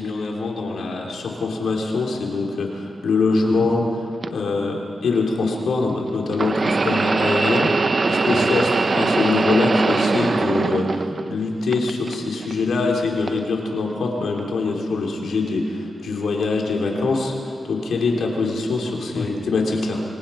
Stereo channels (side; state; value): both; normal; correlation 0.86